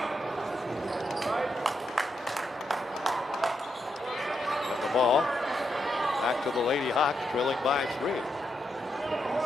Ball back to the Lady Hawks, trailing by 3.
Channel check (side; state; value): both; normal; correlation 0.82